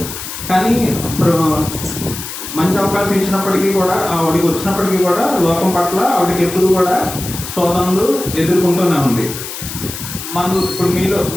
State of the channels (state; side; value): noise; left; hiss, 9 dB below the sound